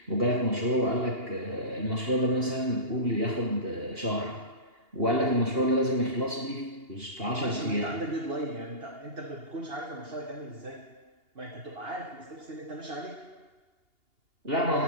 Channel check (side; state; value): left; late; 2.8 ms